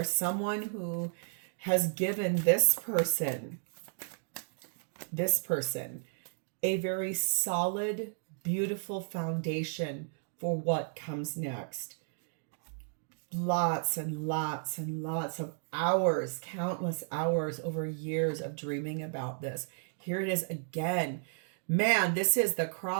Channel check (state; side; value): silent; left; digital silence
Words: someone who has given this person a very solid, beautiful foundation for what comes next. Lots and lots and lots of hours, countless hours over years of dreaming about this. Here it is again. Man, this is the